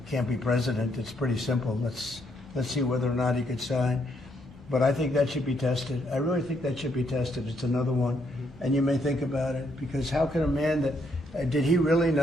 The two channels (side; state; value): both; normal; correlation 0.74